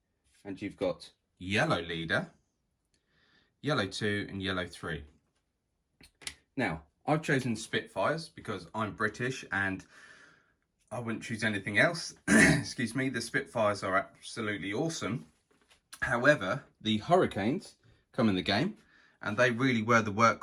And you've got yellow leader, yellow 2 and yellow 3. Now, I've chosen Spitfires because I'm British and I wouldn't choose anything else. Excuse me, the Spitfires are absolutely awesome. However, the Hurricanes come in the game and they really were the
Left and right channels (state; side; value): identical; both; correlation 1.00